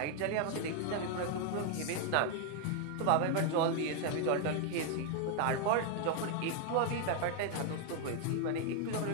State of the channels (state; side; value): different; both; correlation 0.00